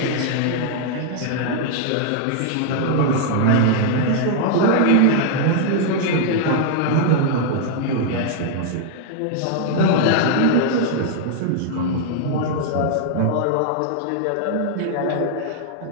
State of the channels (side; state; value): both; different; correlation 0.00